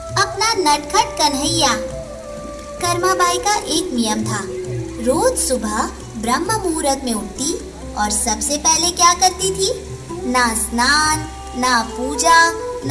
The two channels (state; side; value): identical; both; correlation 1.00